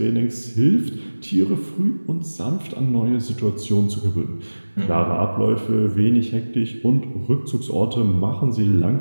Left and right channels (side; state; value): both; inverted; correlation -1.00